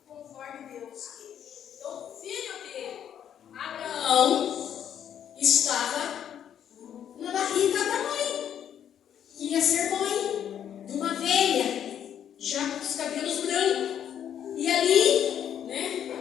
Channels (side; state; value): right; quieter; 9.4 dB